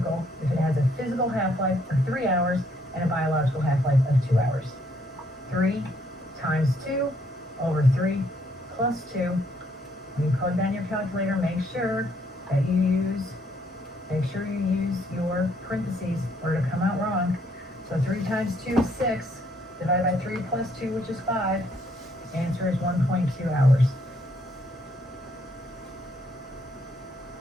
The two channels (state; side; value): normal; both; correlation 0.69